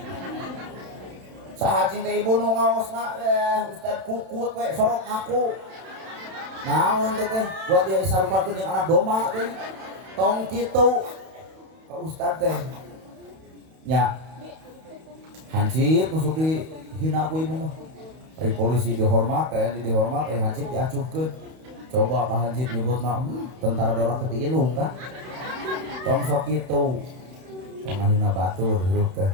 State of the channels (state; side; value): late; left; 31 ms